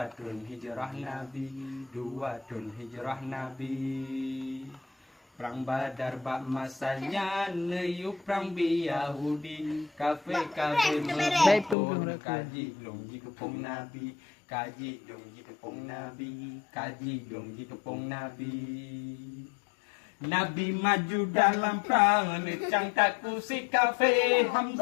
hijrah Nabi 2 tahun hijrah Nabi. Perang Badar bak masanya neyup perang Yahudi kafe menghibur kaji dong kepung Nabi kaji dong kepung Nabi kaji dong kepung Nabi. Nabi maju dalam perang necang taku si kafe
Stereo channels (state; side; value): drops out; right; at 11.8 s